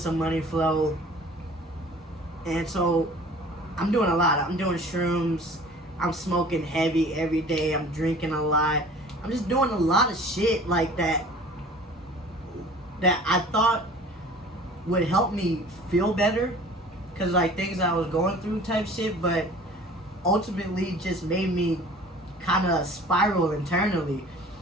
money flow. And so I'm doing a lot. I'm doing shrooms. I'm smoking heavy every day. I'm drinking a lot. I'm just doing a lot of shit like that I thought would help me feel better. Because like things I was going through type shit. But ultimately just made me kind of spiral internally.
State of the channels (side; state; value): both; normal; correlation 0.46